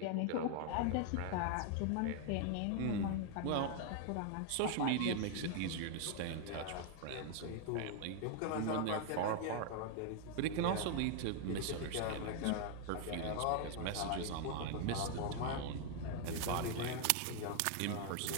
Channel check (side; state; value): both; different; correlation 0.00